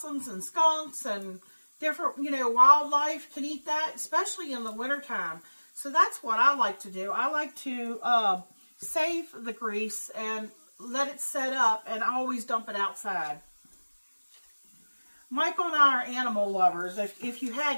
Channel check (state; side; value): inverted; both; correlation -1.00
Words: and skunks and different, you know, wildlife can eat that, especially in the wintertime. So that's what I like to do. I like to save the grease and let it set up, and I always dump it outside. Michael and I are animal lovers. If you